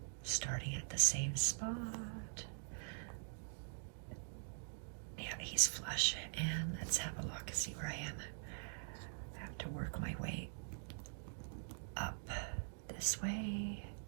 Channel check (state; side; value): silent; left; digital silence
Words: starting at the same spot. Yeah, he's flush. And let's have a look, see where I am. I have to work my way up this way.